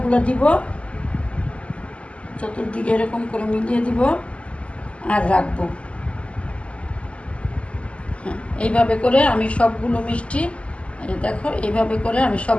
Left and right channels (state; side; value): late; right; 0.058 ms